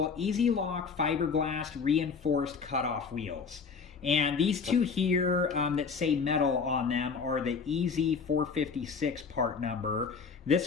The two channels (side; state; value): right; quieter; 5.5 dB